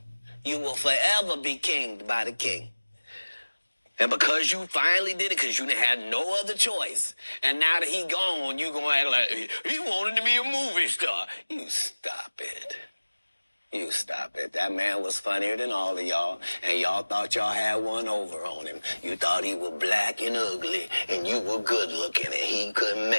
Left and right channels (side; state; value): both; inverted; correlation -1.00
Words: you will forever be kinged by the king. And because you finally did it, because you had no other choice, and now that he gone, you going to act like he wanted to be a movie star. You stop it. You stop it. That man was funnier than all of y'all, and y'all thought y'all had one over on him. You thought he was black and ugly, and you were good looking, and he couldn't